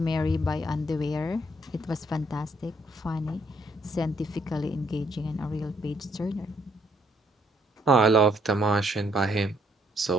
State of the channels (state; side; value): normal; both; correlation 0.69